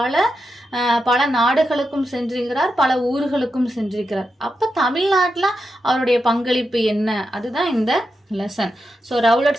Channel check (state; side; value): normal; both; correlation 0.87